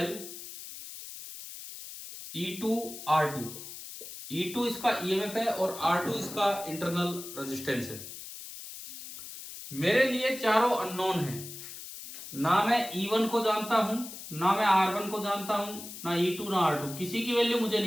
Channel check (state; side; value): noise; left; hiss, 12 dB below the sound